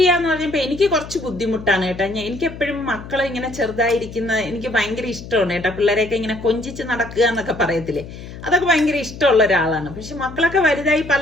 പറഞ്ഞപ്പോ എനിക്ക് കുറച്ച് ബുദ്ധിമുട്ടാണ് കേട്ടോ. എനിക്ക് എപ്പോഴും മക്കളെ ഇങ്ങനെ ചെറുതായിരിക്കുന്ന എനിക്ക് ഭയങ്കര ഇഷ്ടമാണ് കേട്ടോ. പിള്ളേരെയൊക്കെ ഇങ്ങനെ കൊഞ്ചിച്ച് നടക്കുക എന്നൊക്കെ പറയത്തില്ലേ, അതൊക്കെ ഭയങ്കര ഇഷ്ടമുള്ള ഒരാളാണ്. പക്ഷെ മക്കളൊക്കെ വലുതായി പല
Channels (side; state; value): left; noise; hum, 13 dB below the sound